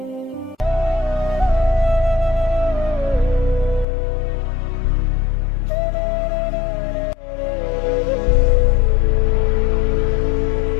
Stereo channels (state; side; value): drops out; right; at 3.9 s